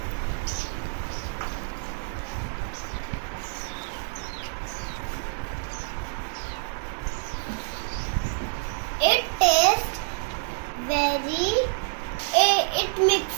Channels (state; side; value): silent; left; digital silence